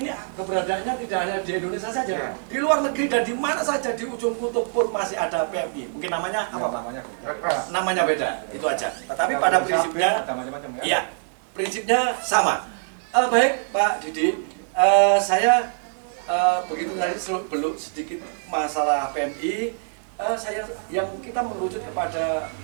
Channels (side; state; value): left; silent; digital silence